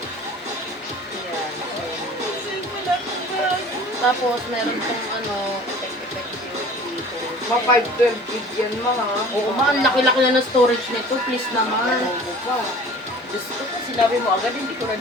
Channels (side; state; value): both; normal; correlation 0.45